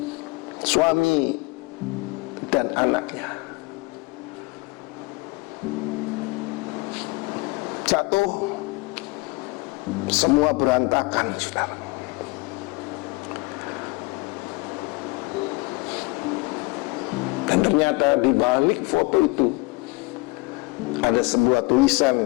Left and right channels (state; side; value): quieter; right; 24.7 dB